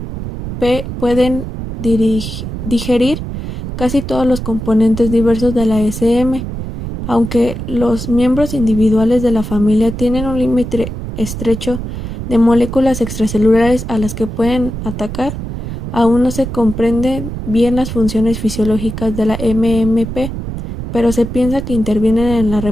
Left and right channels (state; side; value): noise; right; rumble, 7 dB below the sound